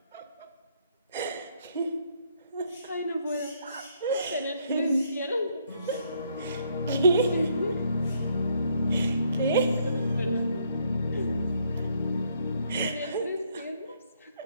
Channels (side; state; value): both; inverted; correlation -0.70